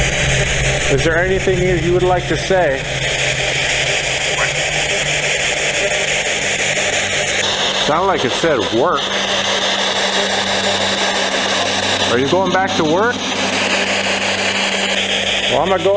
Is there anything you would like to say? Sounded like it said work. Are you going back to work? Well, I'm going to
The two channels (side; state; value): both; identical; correlation 1.00